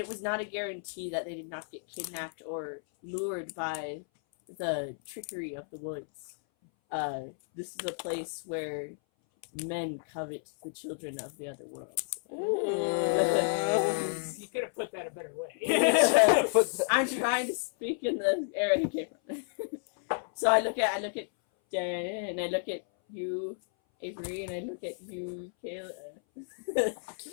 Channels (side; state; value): right; silent; 57 dB below the other